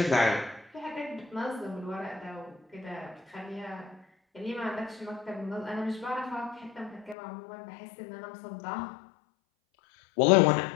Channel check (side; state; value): right; drops out; at 7.2 s